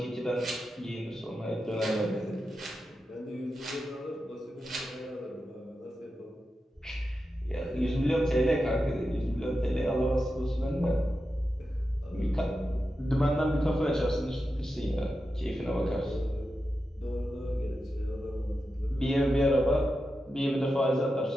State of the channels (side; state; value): both; normal; correlation 0.90